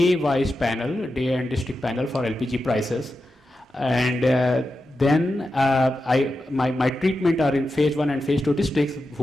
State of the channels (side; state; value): both; normal; correlation 0.90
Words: panel, day and district panel for LPG prices, and then my treatment are in phase 1 and phase 2 districts